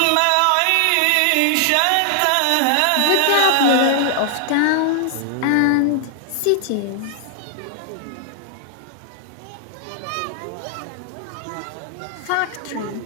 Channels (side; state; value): both; different; correlation 0.00